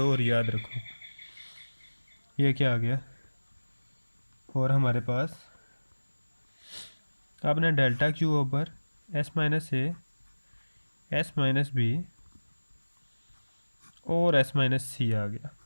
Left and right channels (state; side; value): inverted; both; correlation -1.00